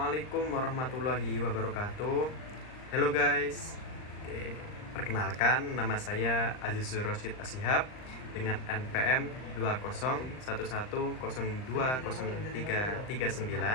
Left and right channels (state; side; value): late; right; 39 ms